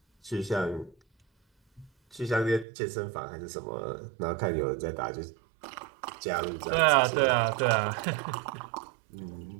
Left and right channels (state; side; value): drops out; left; at 2.7 s